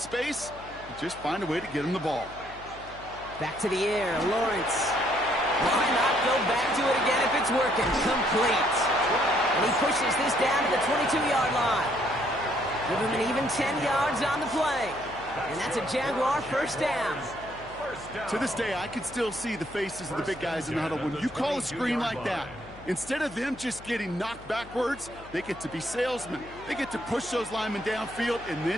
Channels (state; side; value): noise; left; hum, 19 dB below the sound